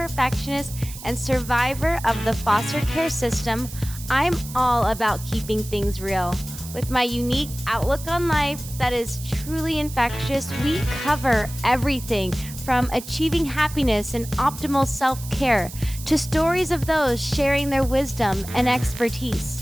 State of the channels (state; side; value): noise; right; hiss, 14 dB below the sound